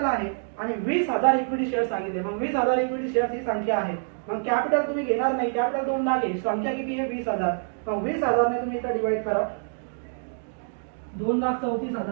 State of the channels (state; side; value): silent; left; digital silence